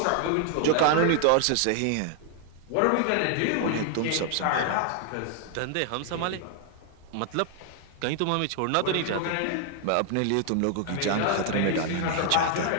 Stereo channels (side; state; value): both; different; correlation 0.00